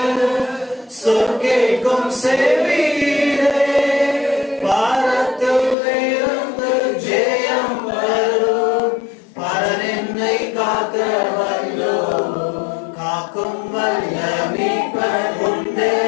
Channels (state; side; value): drops out; right; at 5.8 s